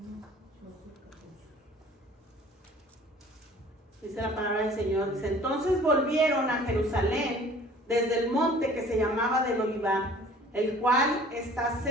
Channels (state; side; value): normal; both; correlation 0.50